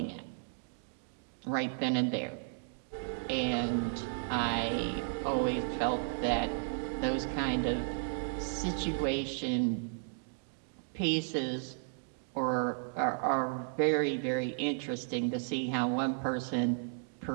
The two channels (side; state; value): left; silent; digital silence